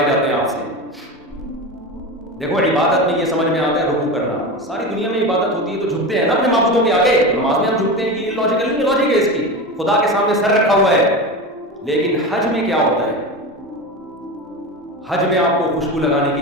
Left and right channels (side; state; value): both; normal; correlation 0.25